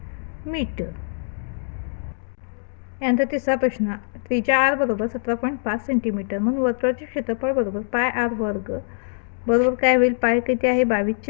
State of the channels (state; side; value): silent; right; digital silence